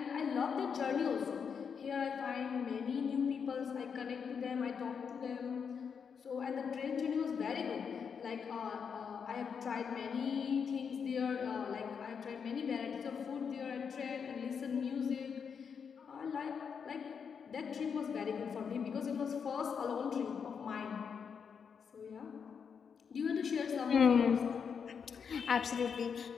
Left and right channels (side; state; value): right; quieter; 6.6 dB